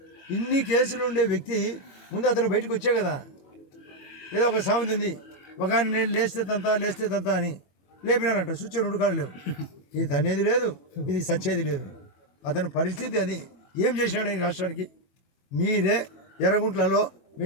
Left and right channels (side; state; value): right; late; 21 ms